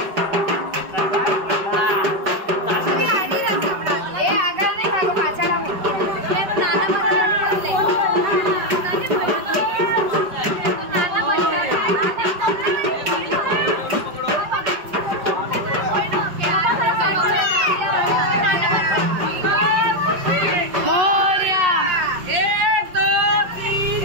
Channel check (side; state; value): left; late; 5.2 ms